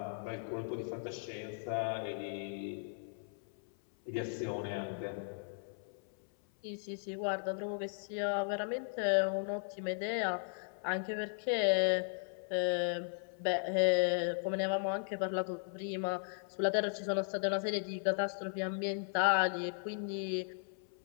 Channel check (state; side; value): silent; right; 53 dB below the other